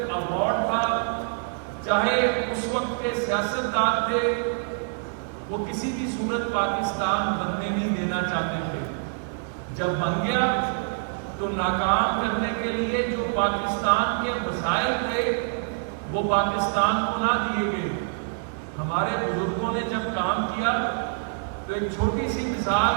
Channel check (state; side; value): silent; left; digital silence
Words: ایوارڈ تھا، چاہے اس وقت کے سیاستدان تھے، وہ کسی بھی صورت پاکستان بننے نہیں دینا چاہتے تھے۔ جب بن گیا تو ناکام کرنے کے لیے جو پاکستان کے وسائل تھے وہ پاکستان کو نہ دیے گئے۔ ہمارے بزرگوں نے جب کام کیا تو ایک چھوٹی سی مثال